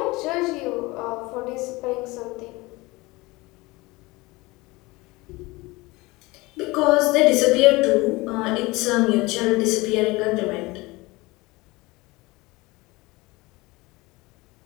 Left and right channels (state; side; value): quieter; right; 22.4 dB